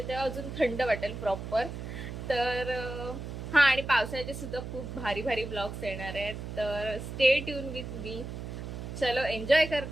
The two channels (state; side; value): noise; right; hum, 8 dB below the sound